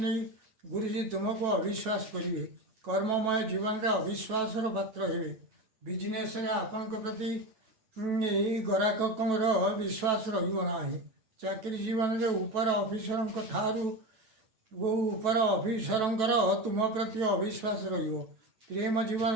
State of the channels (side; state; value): left; late; 9.1 ms